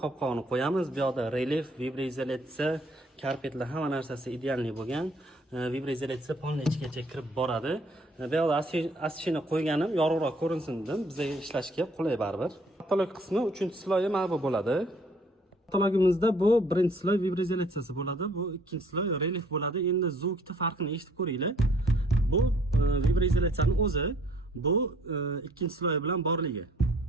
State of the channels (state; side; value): normal; both; correlation 0.61